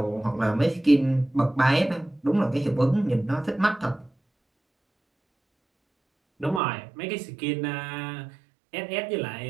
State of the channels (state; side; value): drops out; left; at 6.6 s